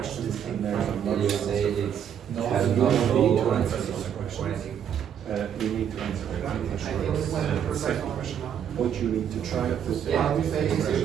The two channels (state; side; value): quieter; left; 8.8 dB